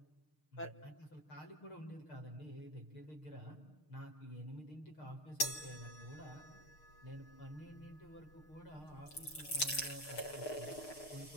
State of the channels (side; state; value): right; late; 6.6 ms